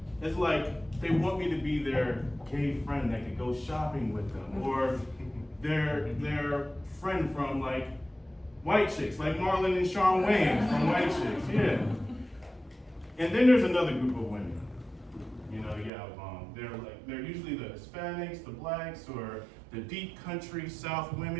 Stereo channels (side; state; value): left; drops out; at 15.9 s